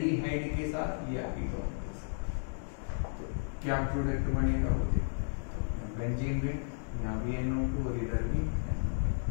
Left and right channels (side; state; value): right; silent; digital silence